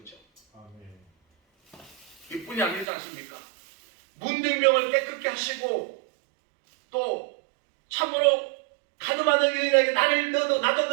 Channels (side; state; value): left; drops out; at 2.9 s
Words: 거죠. 이뿐이 아니지 않습니까? 문둥병을 깨끗게 하시고 또 참으로 가늠하는 여인에게 나도